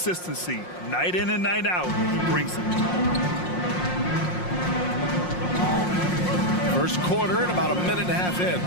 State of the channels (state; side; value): late; right; 5.6 ms